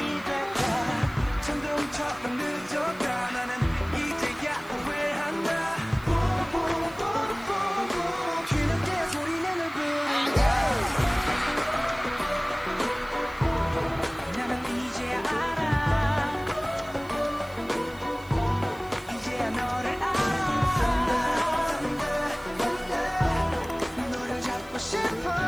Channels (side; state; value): right; noise; hiss, 24 dB below the sound